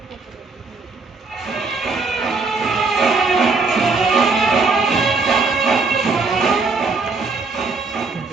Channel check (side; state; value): left; quieter; 4.1 dB